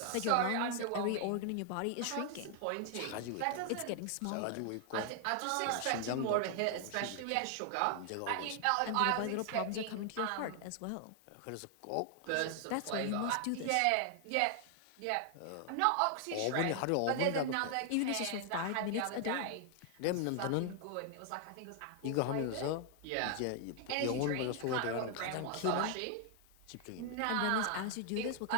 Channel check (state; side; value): different; both; correlation 0.00